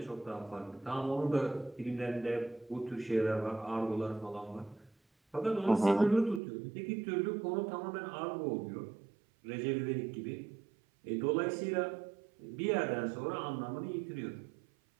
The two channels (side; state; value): left; drops out; at 6.4 s